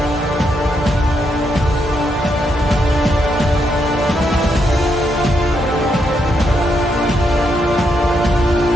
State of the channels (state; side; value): normal; both; correlation 0.79